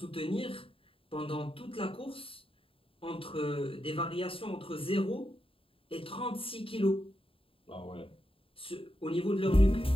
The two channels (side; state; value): right; late; 0.27 ms